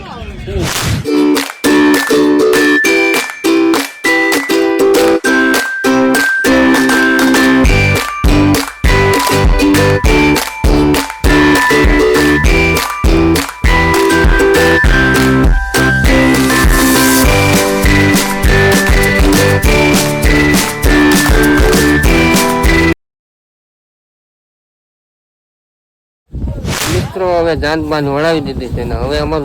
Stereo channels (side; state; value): both; identical; correlation 1.00